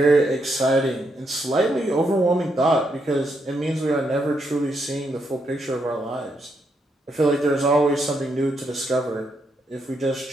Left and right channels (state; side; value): normal; both; correlation 0.79